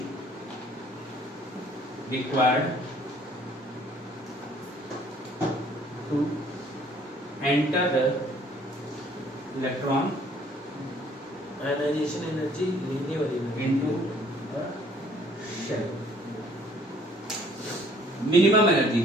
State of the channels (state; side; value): normal; both; correlation 0.59